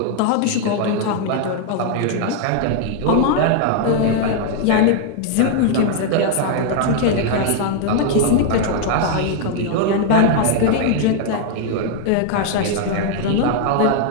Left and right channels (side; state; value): both; different; correlation 0.00